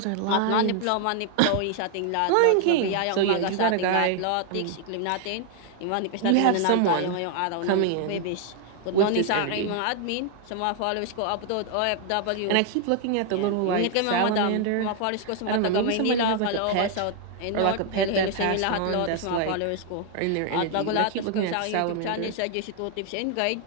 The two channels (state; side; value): different; both; correlation 0.00